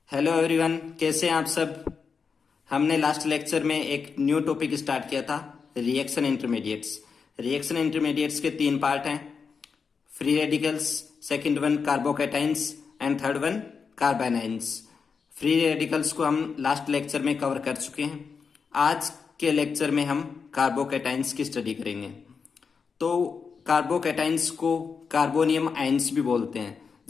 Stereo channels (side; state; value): right; quieter; 5.6 dB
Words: Hello everyone, कैसे हैं आप सब। हमने लास्ट लेक्चर में एक न्यू टॉपिक स्टार्ट किया था, रिएक्शन इंटरमीडिएट्स। रिएक्शन इंटरमीडिएट्स के तीन पार्ट हैं, free radicals, second one carbocations and third one carbanions. Free radicals को हम लास्ट लेक्चर में कवर कर चुके हैं। आज के लेक्चर में हम कार्बोकैटाइंस की स्टडी करेंगे। तो कार्बोकैटाइंस को कार्बोनियम आयंस भी बोलते हैं।